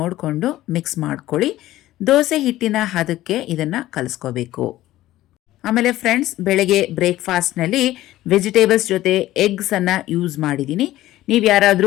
ಮಿಕ್ಸ್ ಮಾಡ್ಕೊಳ್ಳಿ. ದೋಸೆ ಹಿಟ್ಟಿನ ಹದಕ್ಕೆ ಇದನ್ನು ಕಲಿಸ್ಕೋಬೇಕು. ಆಮೇಲೆ ಫ್ರೆಂಡ್ಸ್, ಬೆಳಗ್ಗೆ ಬ್ರೇಕ್ಫಾಸ್ಟ್ನಲ್ಲಿ ವೆಜಿಟೇಬಲ್ಸ್ ಜೊತೆ ಎಗ್ಸನ್ನು ಯೂಸ್ ಮಾಡಿದ್ದೀನಿ. ನೀವು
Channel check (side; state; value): right; quieter; 15.3 dB